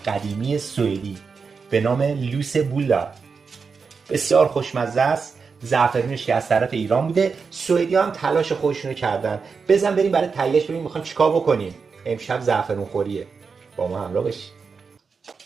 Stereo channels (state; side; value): quieter; left; 5.3 dB